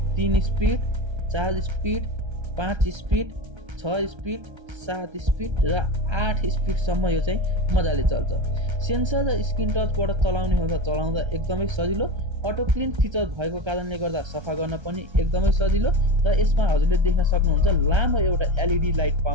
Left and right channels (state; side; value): late; left; 1.3 ms